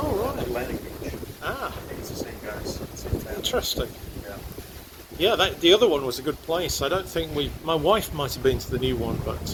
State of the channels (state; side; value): identical; both; correlation 1.00